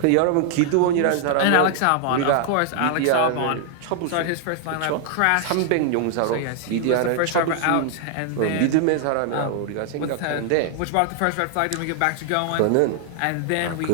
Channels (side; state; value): both; different; correlation 0.00